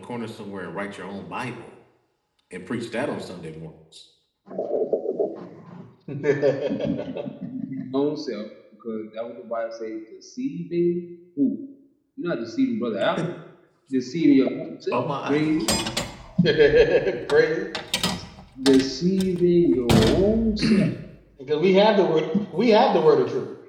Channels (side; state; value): both; identical; correlation 1.00